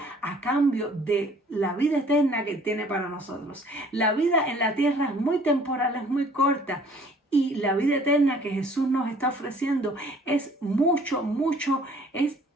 a cambio de la vida eterna que tiene para nosotros. La vida en la tierra es muy temporal, es muy corta. Y la vida eterna que Jesús nos está ofreciendo es mucho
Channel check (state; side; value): normal; both; correlation 0.55